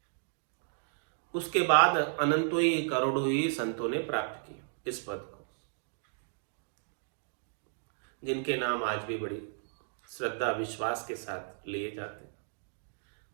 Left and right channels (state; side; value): silent; left; digital silence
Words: उसके बाद अनंतों ही करोड़ों ही संतों ने प्राप्त किया इस पद को, जिनके नाम आज भी बड़ी श्रद्धा विश्वास के साथ लिए जाते हैं।